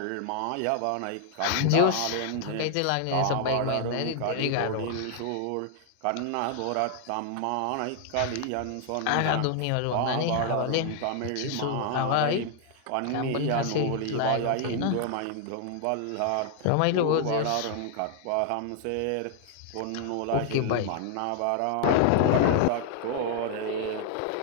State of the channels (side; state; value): both; different; correlation 0.00